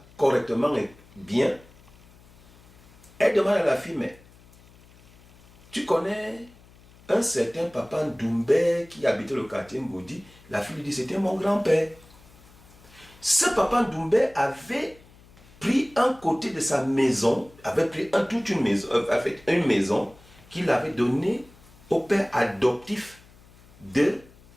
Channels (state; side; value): noise; left; hum, 26 dB below the sound